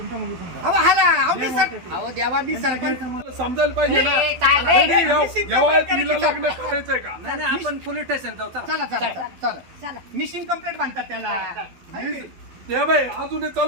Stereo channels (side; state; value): left; late; 12 ms